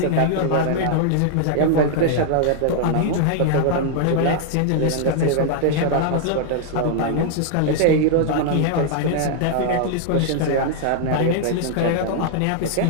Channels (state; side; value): different; both; correlation -0.01